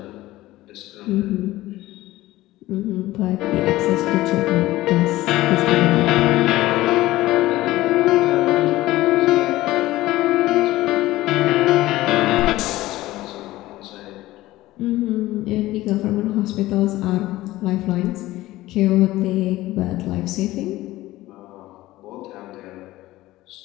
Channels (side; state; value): right; quieter; 17.0 dB